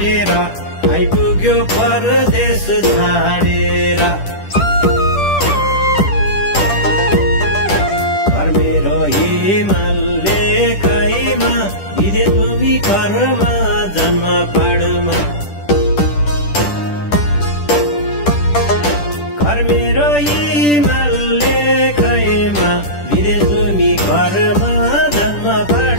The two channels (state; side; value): late; right; 10 ms